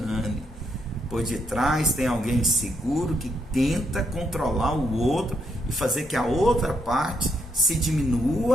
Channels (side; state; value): both; normal; correlation 0.77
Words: Por detrás tem alguém inseguro que tenta controlar o outro e fazer que a outra parte se